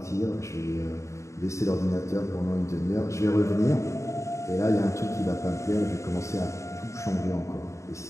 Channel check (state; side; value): late; right; 0.14 ms